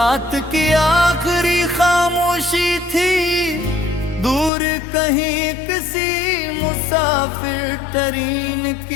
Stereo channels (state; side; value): drops out; right; at 4.5 s